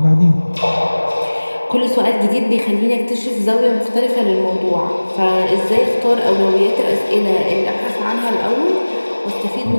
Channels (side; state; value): both; inverted; correlation -1.00